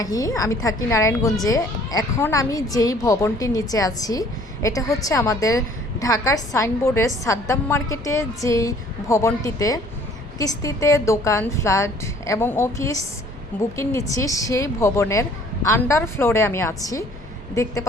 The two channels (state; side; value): normal; both; correlation 0.56